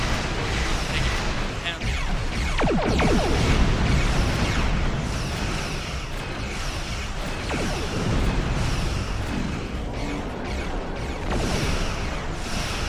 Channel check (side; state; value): both; identical; correlation 1.00